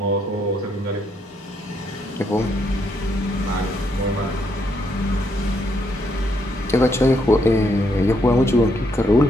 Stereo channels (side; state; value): both; normal; correlation 0.75